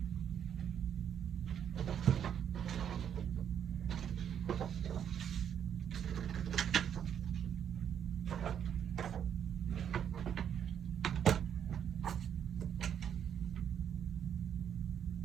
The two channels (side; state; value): left; quieter; 8.8 dB